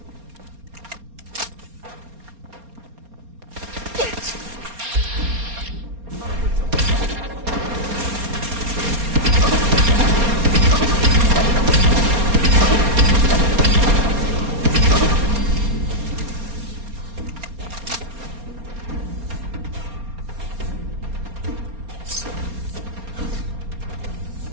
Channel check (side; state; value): left; late; 4.3 ms